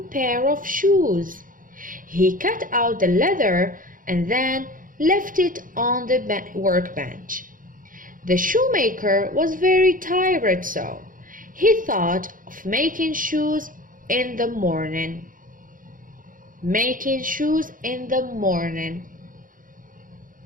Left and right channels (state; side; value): late; left; 0.40 ms